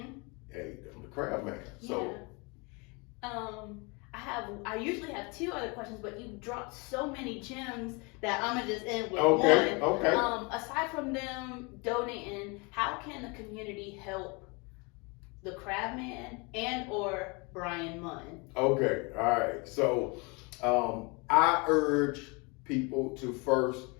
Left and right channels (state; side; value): quieter; right; 29.4 dB